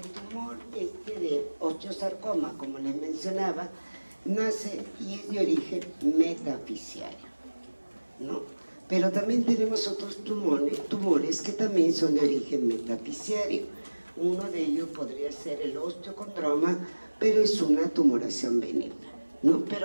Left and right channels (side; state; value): both; inverted; correlation -1.00